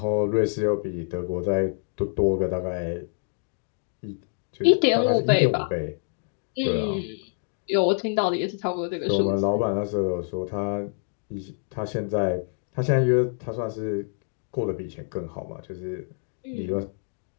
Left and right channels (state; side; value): silent; right; digital silence